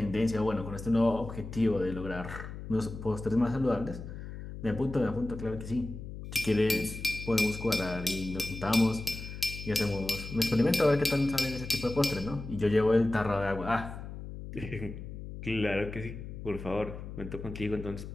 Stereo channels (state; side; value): noise; left; hum, 10 dB below the sound